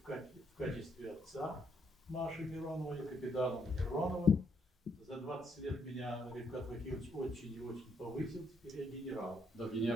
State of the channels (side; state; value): both; normal; correlation 0.73